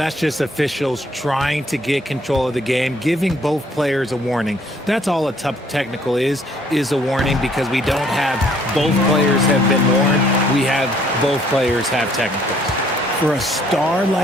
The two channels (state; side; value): normal; both; correlation 0.63